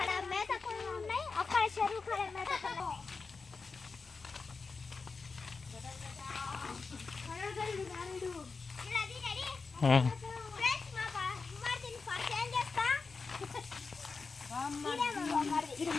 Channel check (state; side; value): quieter; right; 4.5 dB